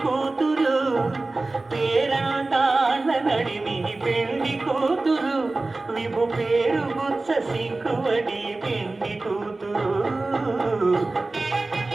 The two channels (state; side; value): quieter; left; 3.2 dB